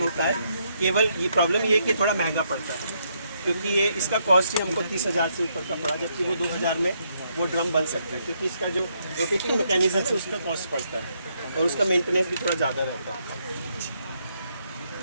होता है। केवल ये प्रॉब्लम ये है कि थोड़ा महंगा पड़ता है, क्योंकि ये इसका कॉस्ट ही हमको 30,000 से ऊपर का पड़ा, जबकि वो 2,000 में वो ड्रम बन सकता है, क्योंकि इसका जो रोटेटिंग मैकेनिज्म है उसका कॉस्ट पड़ता है और उसका मेंटेनेंस भी थोड़ा ज़्यादा रहता है।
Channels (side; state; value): both; inverted; correlation -0.75